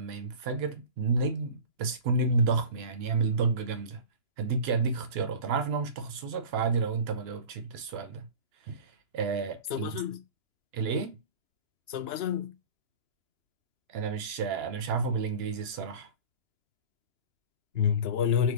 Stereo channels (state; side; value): late; left; 2.9 ms